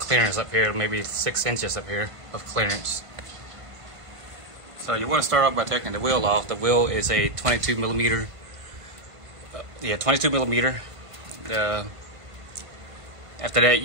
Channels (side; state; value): left; late; 1.5 ms